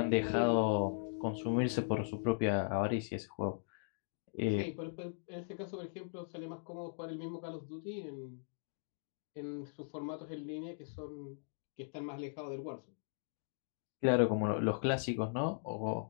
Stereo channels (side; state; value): right; silent; digital silence